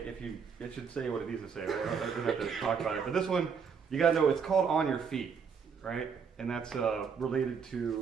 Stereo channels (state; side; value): quieter; left; 6.2 dB